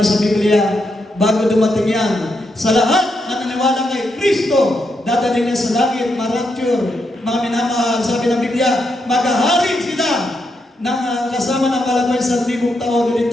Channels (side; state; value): both; normal; correlation 0.81